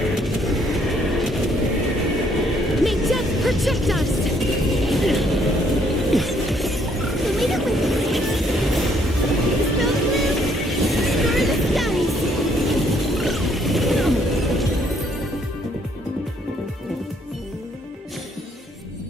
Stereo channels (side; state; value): both; normal; correlation 0.67